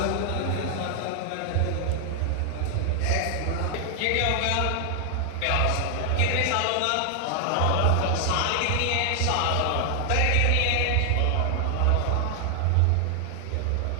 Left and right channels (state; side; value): different; both; correlation 0.00